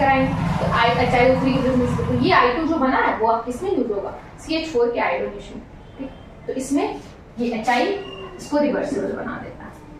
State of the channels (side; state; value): both; identical; correlation 1.00